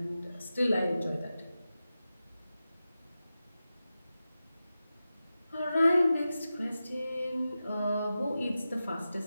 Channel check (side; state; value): both; inverted; correlation -0.93